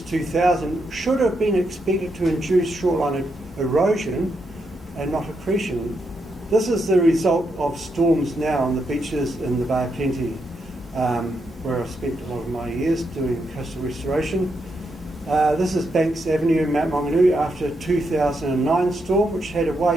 2000 should have been expected to induce shoreline erosion and not accretion. This is the result of storms now on the beaches in the Bay of Plenty, where I've spent a lot of my years doing coastal restoration. This is Banks Avenue in Mount Maunganui after a 2009 storm, which had a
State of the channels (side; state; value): both; normal; correlation 0.81